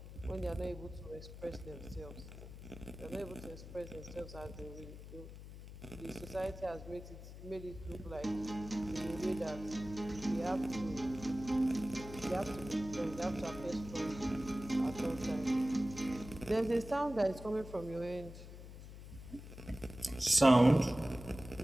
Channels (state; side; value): noise; left; hum, 13 dB below the sound